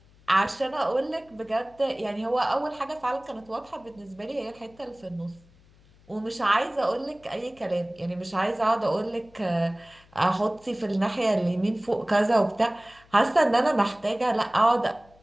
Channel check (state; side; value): noise; left; hum, 28 dB below the sound